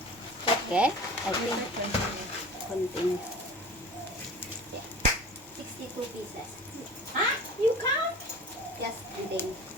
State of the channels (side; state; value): both; normal; correlation 0.39